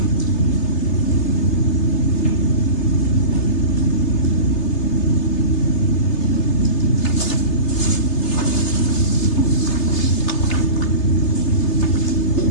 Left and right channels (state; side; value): late; right; 3.3 ms